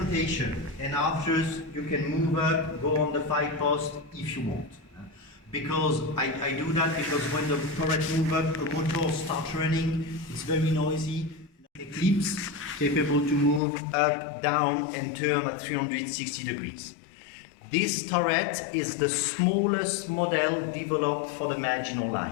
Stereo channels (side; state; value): right; drops out; at 13.6 s